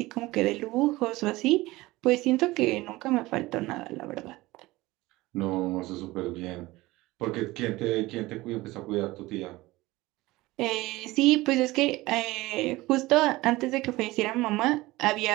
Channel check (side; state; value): left; quieter; 19.5 dB